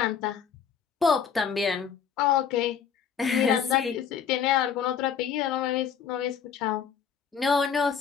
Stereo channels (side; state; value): right; quieter; 7.3 dB